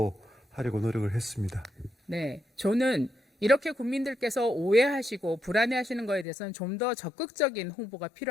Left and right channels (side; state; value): right; drops out; at 6.2 s